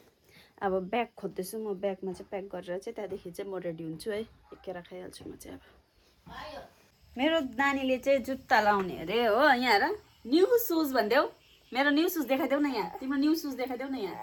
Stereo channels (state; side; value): identical; both; correlation 1.00